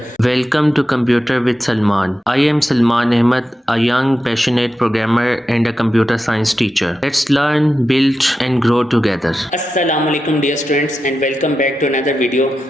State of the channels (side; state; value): both; normal; correlation 0.90